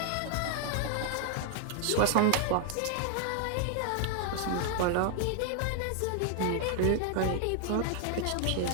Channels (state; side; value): different; both; correlation 0.00